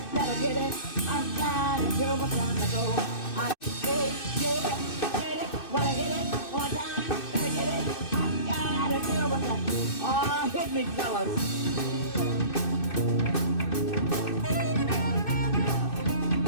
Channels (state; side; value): late; right; 2.6 ms